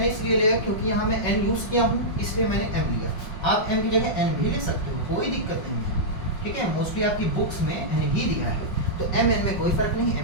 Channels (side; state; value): right; late; 5.5 ms